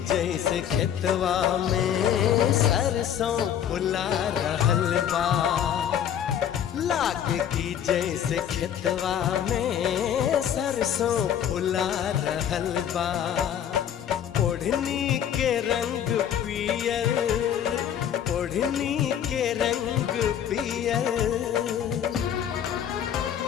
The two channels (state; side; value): quieter; right; 9.5 dB